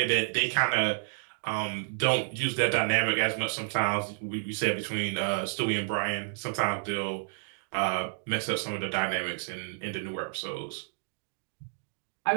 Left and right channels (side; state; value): left; silent; digital silence